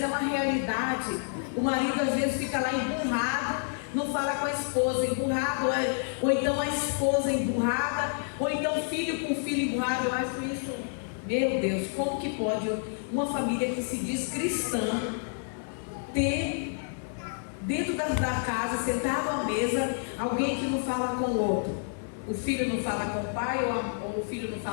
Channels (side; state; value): right; silent; digital silence